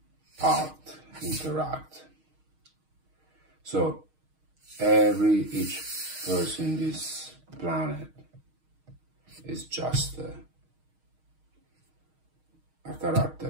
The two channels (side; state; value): left; late; 6.4 ms